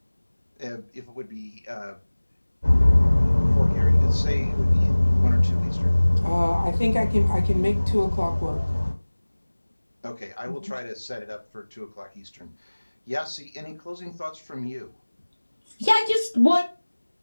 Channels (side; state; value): both; inverted; correlation -1.00